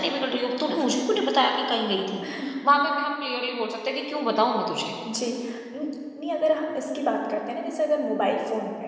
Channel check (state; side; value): identical; both; correlation 1.00